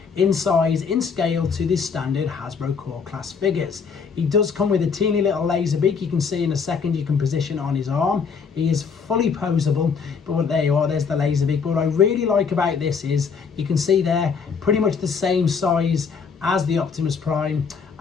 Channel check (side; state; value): right; quieter; 5.8 dB